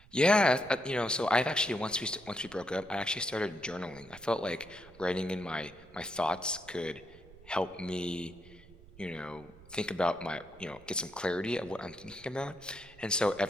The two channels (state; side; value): noise; right; rumble, 23 dB below the sound